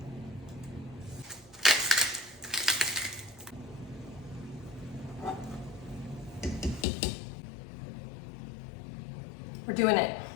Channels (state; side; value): drops out; right; at 6.9 s